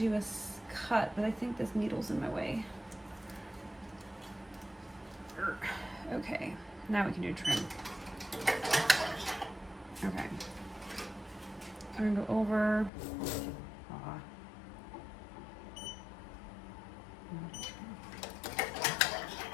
a cut, but I think this needle's in my way. Okay, now we can do trim. Okay. I'm gonna go over.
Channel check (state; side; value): drops out; right; at 12.9 s